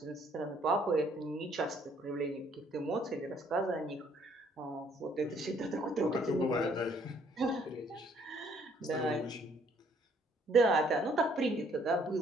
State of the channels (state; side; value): normal; both; correlation 0.64